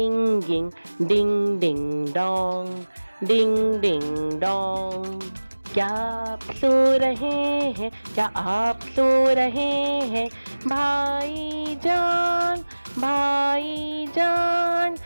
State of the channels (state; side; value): inverted; both; correlation -1.00